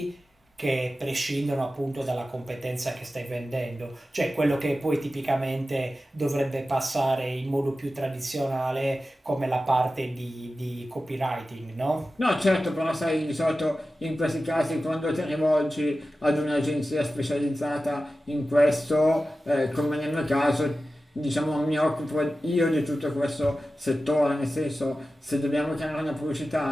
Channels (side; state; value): both; normal; correlation 0.94